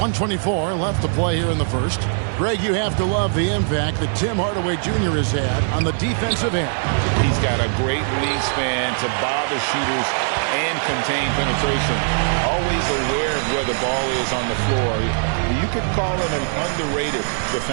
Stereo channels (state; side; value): silent; left; digital silence